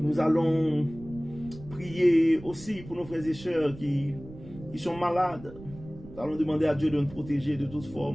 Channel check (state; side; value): noise; right; rumble, 16 dB below the sound